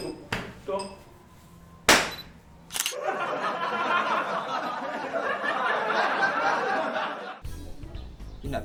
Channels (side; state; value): both; identical; correlation 1.00